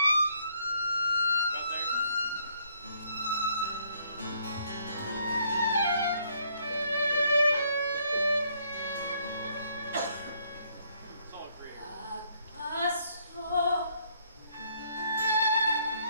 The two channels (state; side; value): inverted; both; correlation -0.67